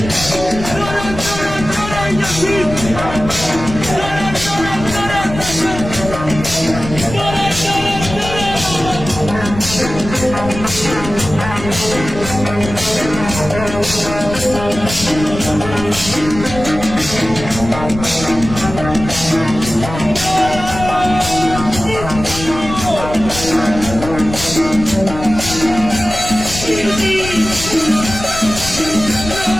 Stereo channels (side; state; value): left; noise; rumble, 10 dB below the sound